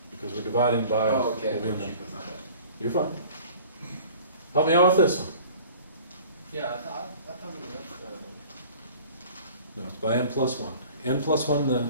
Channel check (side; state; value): both; inverted; correlation -0.46